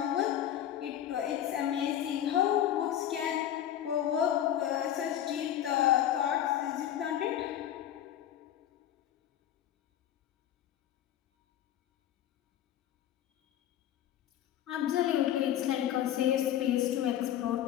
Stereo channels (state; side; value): quieter; right; 11.2 dB